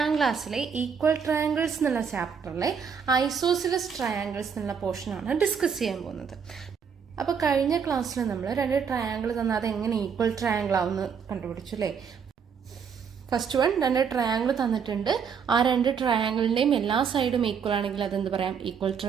ക്ലാസ്സിലെ ഈക്വൽ ട്രയാങ്കിൾസ് എന്നുള്ള ചാപ്റ്ററിലെ ഐസോസിലസ് ട്രയാങ്കിൾസ് എന്നുള്ള പോർഷനാണ് ഡിസ്കസ് ചെയ്യാൻ പോകുന്നത്. അപ്പോൾ കഴിഞ്ഞ ക്ലാസ്സിൽ നമ്മൾ രണ്ട് ട്രയാങ്കിൾ തന്നാൽ അത് എങ്ങനെ ഈക്വൽ ട്രയാങ്കിൾ ആവുമെന്ന് കണ്ടുപിടിച്ചു അല്ലേ. ഫസ്റ്റ് വൺ, രണ്ട് ട്രയാങ്കിൾ തന്നിട്ടുണ്ട്. ആ രണ്ട് ട്രയാങ്കിളിന്റെയും എല്ലാ സൈഡും ഈക്വൽ ആണെങ്കിൽ അതെന്ത് പറയാം? ഈക്വൽ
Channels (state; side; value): quieter; left; 6.7 dB